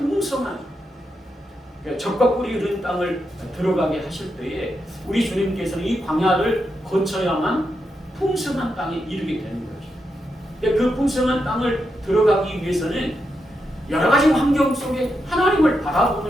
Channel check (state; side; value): normal; both; correlation 0.84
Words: 적과 꿀이 흐른 땅을 들어가게 하실 때에 우리 주님께서는 이 광야를 거쳐야만 풍성한 땅에 이르게 되는 거죠. 그 풍성한 땅을 들어가기 위해서는 여러 가지 환경 속에 하나님을